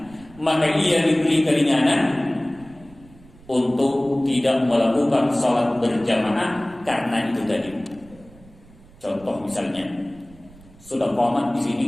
maka ia diberi keringanan untuk tidak melakukan salat berjamaah karena itu tadi. Contoh misalnya sudah qomat di sini,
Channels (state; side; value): noise; right; rumble, 24 dB below the sound